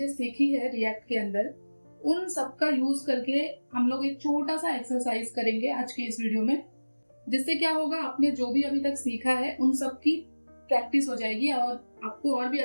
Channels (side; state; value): both; inverted; correlation -1.00